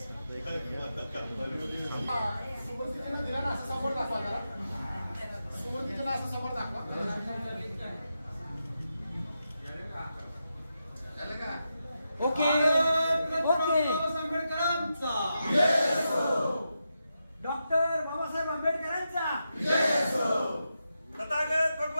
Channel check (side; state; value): both; inverted; correlation -0.87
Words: समोर दाखवा जरा. सुरुवातीला असं समोर दाखवा. Okay okay. आंबेडकरांचा डॉक्टर बाबासाहेब आंबेडकरांचा तथागत